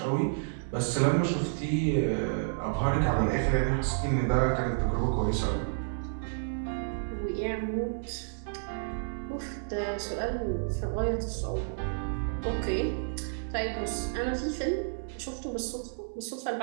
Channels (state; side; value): silent; left; 57 dB below the other